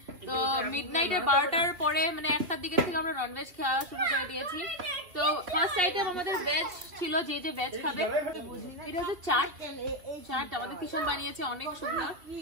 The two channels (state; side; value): late; left; 2.5 ms